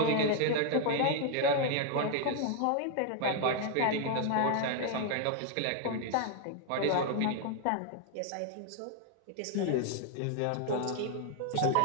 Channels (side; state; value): both; different; correlation 0.00